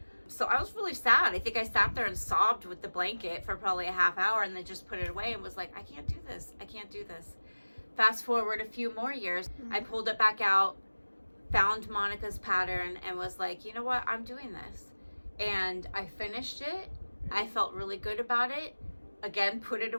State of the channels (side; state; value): both; inverted; correlation -1.00